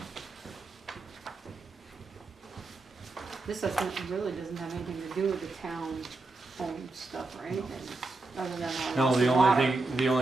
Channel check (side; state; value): left; quieter; 3.3 dB